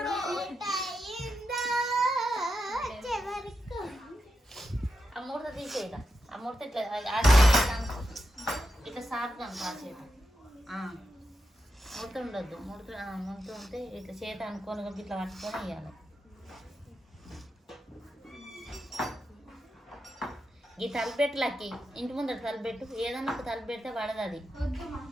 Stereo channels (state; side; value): normal; both; correlation 0.87